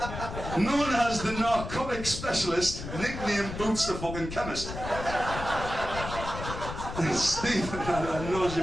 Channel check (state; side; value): noise; left; rumble, 8 dB below the sound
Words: Known as the narcotic specialist, nicknamed Boots the fucking chemist. Stephen, I knows